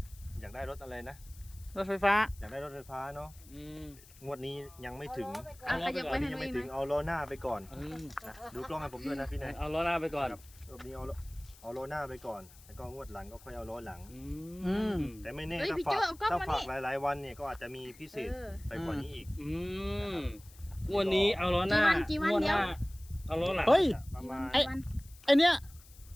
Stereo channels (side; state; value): left; noise; hiss, 23 dB below the sound